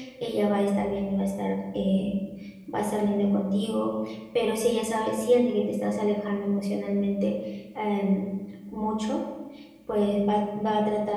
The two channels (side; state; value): both; identical; correlation 1.00